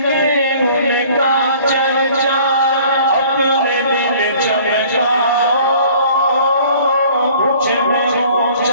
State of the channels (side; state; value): both; inverted; correlation -0.52